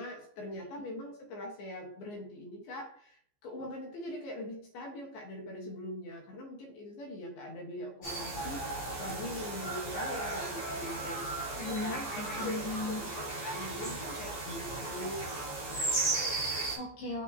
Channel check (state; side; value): late; right; 14 ms